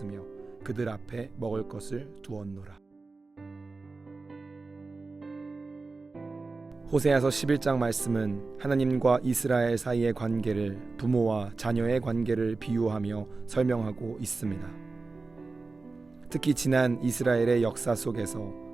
그들 앞에 먹을 것을 두었노라. 호세아서 11장 말씀은 하나님과 이스라엘 사이의 관계를 부모와 자녀의 관계를 비유하며 설명하고 있습니다. 특히 지난 이스라엘의 역사 속에서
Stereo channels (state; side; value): quieter; left; 3.8 dB